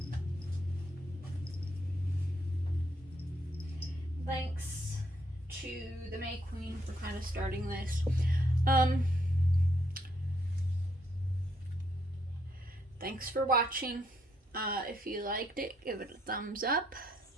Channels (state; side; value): normal; both; correlation 0.73